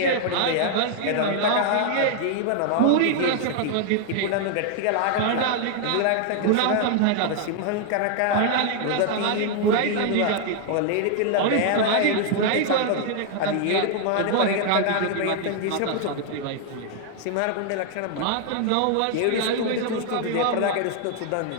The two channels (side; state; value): both; different; correlation 0.00